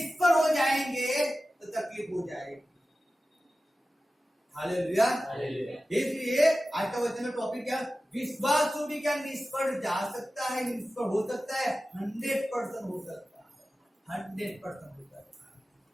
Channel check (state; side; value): normal; both; correlation 0.95